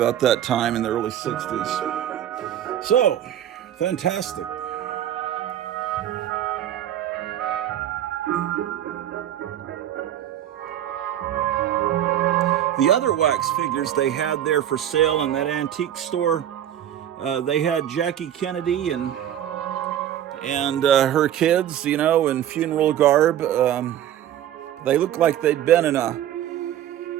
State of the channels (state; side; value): quieter; left; 11.1 dB